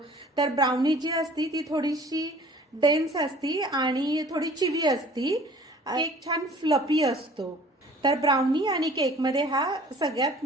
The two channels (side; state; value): both; normal; correlation 0.50